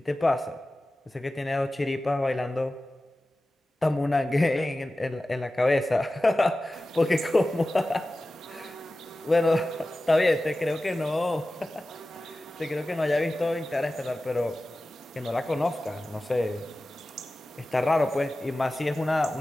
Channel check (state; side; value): normal; both; correlation 0.95